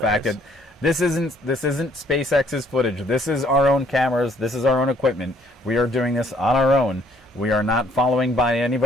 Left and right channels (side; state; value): both; normal; correlation 0.64